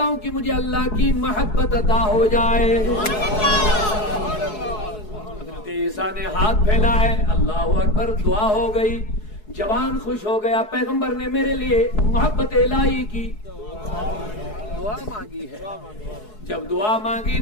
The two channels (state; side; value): late; right; 4.7 ms